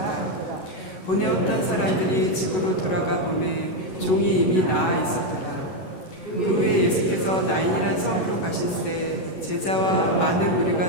보내었던 사람들이 집으로 돌아가 보매 종이 이미 나아 있었더라. 그 후에 예수께서 나인이란 성으로 가실새 제자와 많은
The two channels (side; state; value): right; late; 11 ms